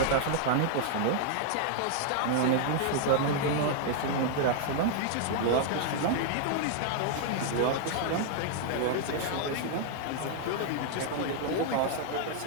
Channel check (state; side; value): different; both; correlation -0.01